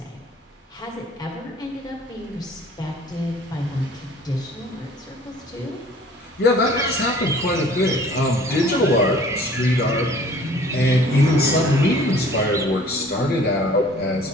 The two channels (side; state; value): both; normal; correlation 0.52